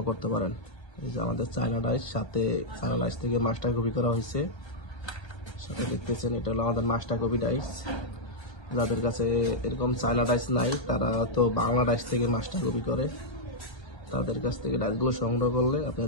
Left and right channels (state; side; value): late; right; 1.3 ms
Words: করতে পারেন। এই যে আমাদের চায়না ডাইস, সাথে চায়না ডাইস থেকে মাস্টার কপি করা হয়েছে। সাথে দেখতেছেন এটা হলো আমাদের মাস্টার কপি ডাইস। যাদের কাছে এরকম চায়না ডাইস নাই তারা তো বাংলা ডাইস থেকে মাস্টার কপি করে, তাদের কাছ থেকে ডাইসগুলো সংগ্রহ করলে